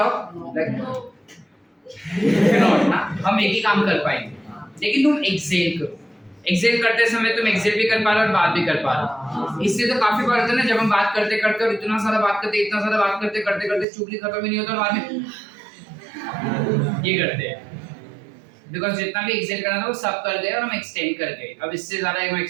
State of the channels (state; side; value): drops out; left; at 13.9 s